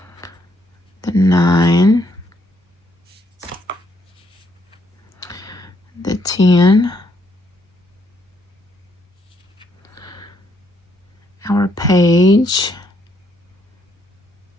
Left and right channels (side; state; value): both; normal; correlation 0.72